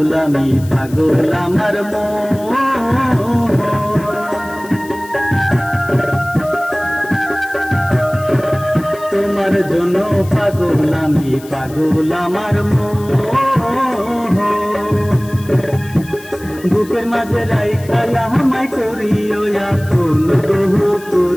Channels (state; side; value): noise; left; hiss, 20 dB below the sound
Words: আমি, পাগল আমার মন। তোমার জন্য পাগল আমি, পাগল আমার মন। বুকের মাঝে রাইখা আমায় করিও আপন, বহু